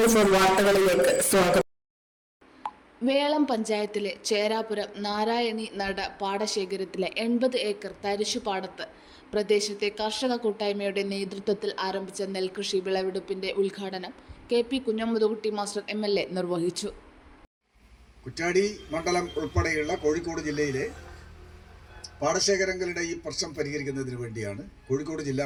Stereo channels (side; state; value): both; identical; correlation 1.00